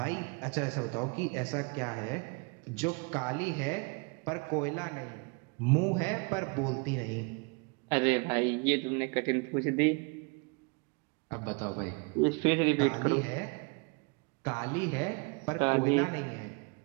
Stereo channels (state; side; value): quieter; left; 32.1 dB